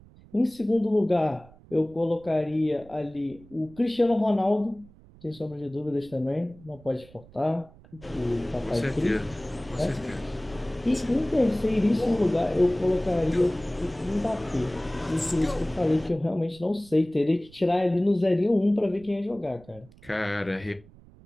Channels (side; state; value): right; noise; rumble, 24 dB below the sound